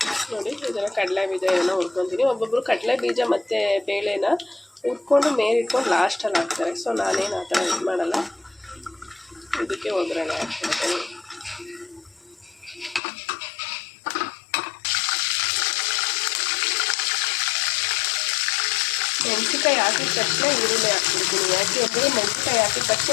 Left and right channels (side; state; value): right; drops out; at 13.0 s